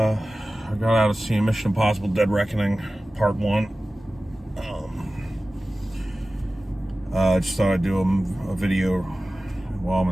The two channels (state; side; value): normal; both; correlation 0.96